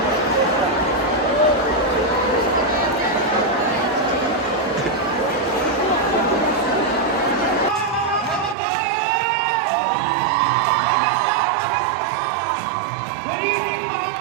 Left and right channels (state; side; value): drops out; left; at 8.6 s